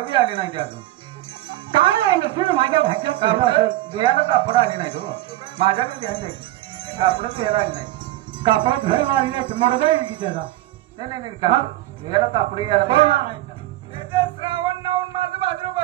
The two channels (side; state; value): left; quieter; 15.9 dB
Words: बी आले नाही अजून. काय आहे नसून माझ्या भाच्यात केलं असेल. देयाला कापड आले नाही तो. माझ्याकडे घ्यायचे कापड देयाला आले नाही. कापडात घर वाढले मरदा येईल की त्याला. नाही देयाला कापड यायला कोण पाहिजे. आणायचं? श्रावण नावून माझं